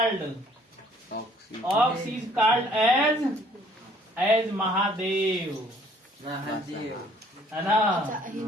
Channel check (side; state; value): both; normal; correlation 0.59